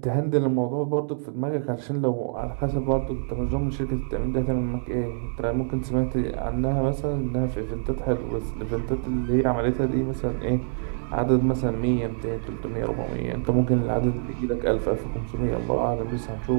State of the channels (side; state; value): left; silent; digital silence